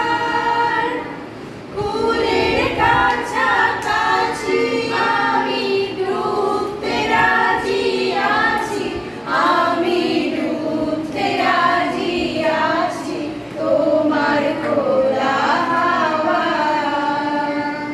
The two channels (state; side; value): identical; both; correlation 1.00